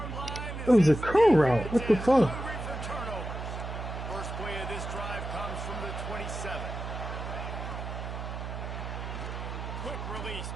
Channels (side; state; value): right; noise; hum, 6 dB below the sound